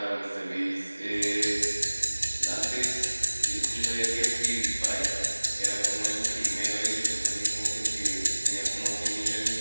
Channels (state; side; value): inverted; both; correlation -1.00